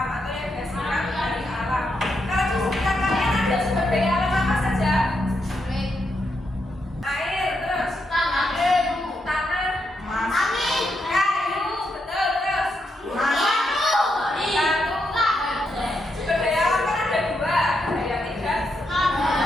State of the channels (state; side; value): normal; both; correlation 0.82